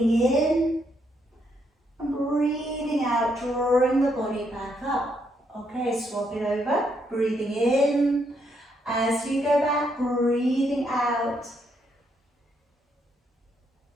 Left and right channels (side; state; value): both; normal; correlation 0.76